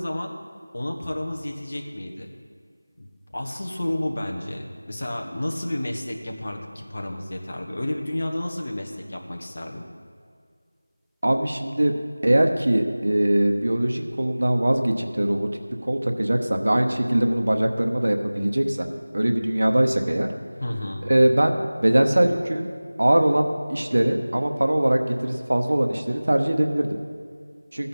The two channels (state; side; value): inverted; both; correlation -0.99